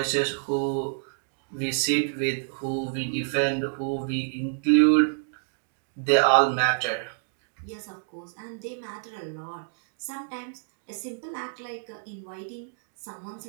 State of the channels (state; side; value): silent; left; digital silence